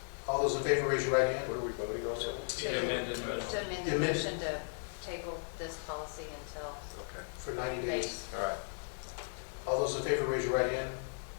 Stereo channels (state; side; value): silent; right; digital silence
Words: All those in favor, raise your right hand. What are we voting on? The amended motion. To amend the motion to table this policy until For 90 days. All right. All those in favor, raise your right hand.